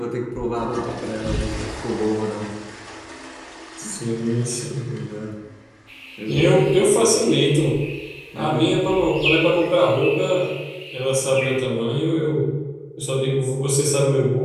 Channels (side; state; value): both; identical; correlation 1.00